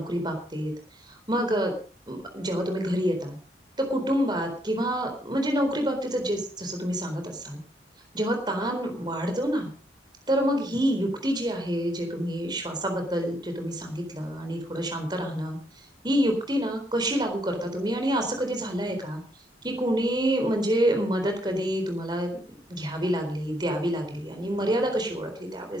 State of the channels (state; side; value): normal; both; correlation 0.73